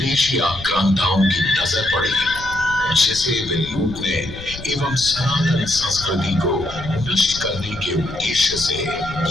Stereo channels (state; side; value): noise; left; rumble, 13 dB below the sound